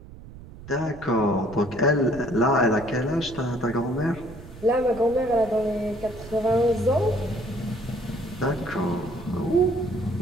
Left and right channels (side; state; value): right; noise; rumble, 16 dB below the sound